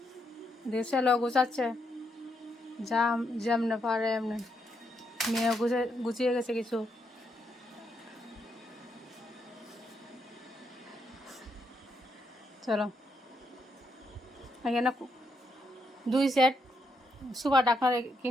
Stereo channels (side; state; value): both; normal; correlation 0.78